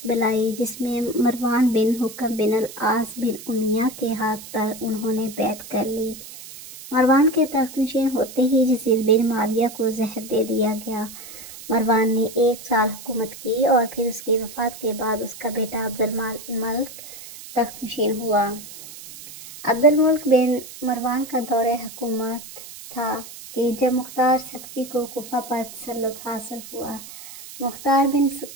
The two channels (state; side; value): noise; right; hiss, 15 dB below the sound